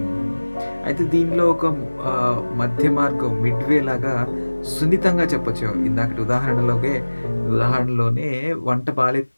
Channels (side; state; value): both; inverted; correlation -1.00